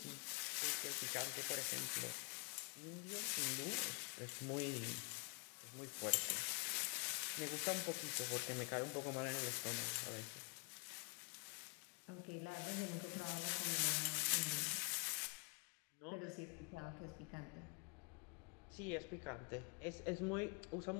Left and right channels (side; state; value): right; quieter; 35.6 dB